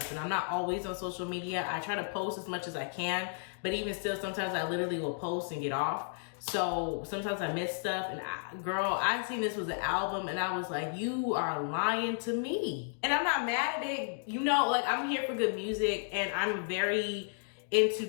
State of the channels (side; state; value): right; silent; digital silence